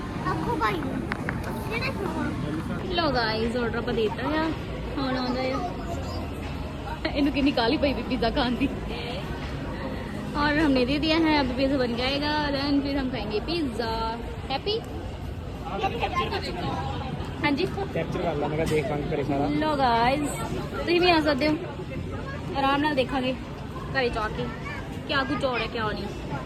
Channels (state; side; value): identical; both; correlation 1.00